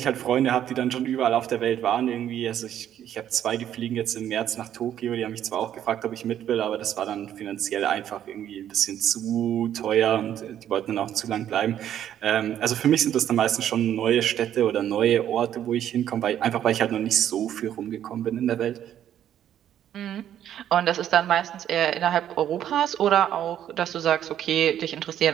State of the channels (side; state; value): left; quieter; 10.6 dB